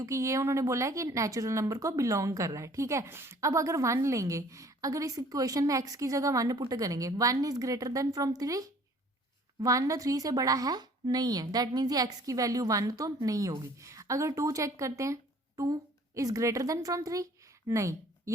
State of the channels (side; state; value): both; normal; correlation 0.54